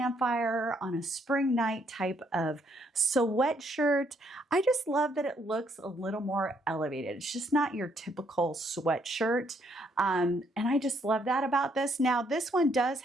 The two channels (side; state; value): both; normal; correlation 0.71